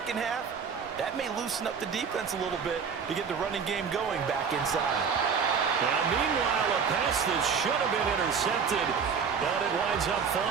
half, that may loosen up the defense a little bit to get the running game going back inside. Now, meanwhile, a pass that should have been intercepted, but it winds up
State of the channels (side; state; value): left; quieter; 6.2 dB